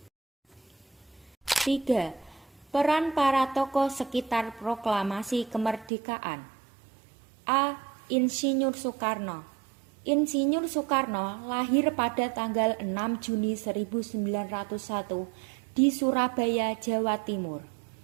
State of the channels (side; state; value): left; drops out; at 5.9 s